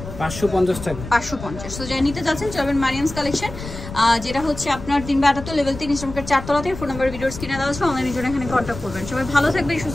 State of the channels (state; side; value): noise; left; rumble, 11 dB below the sound